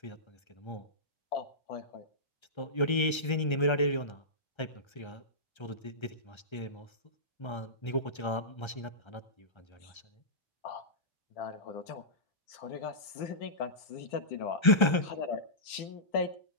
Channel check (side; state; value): right; late; 1.3 ms